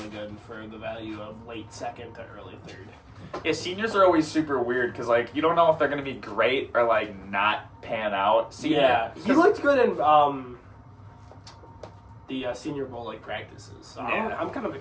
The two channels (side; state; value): both; identical; correlation 1.00